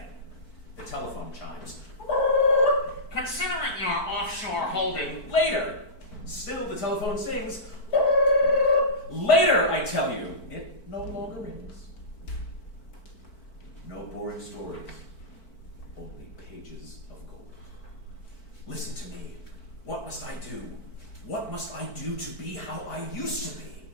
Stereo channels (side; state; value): right; late; 4.5 ms